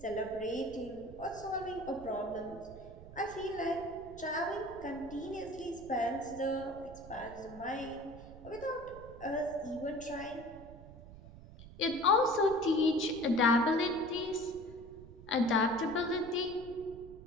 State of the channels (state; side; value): noise; right; rumble, 16 dB below the sound